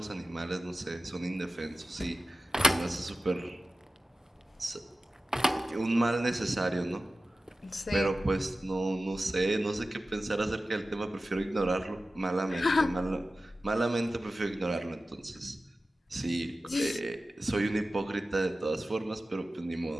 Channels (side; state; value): both; normal; correlation 0.95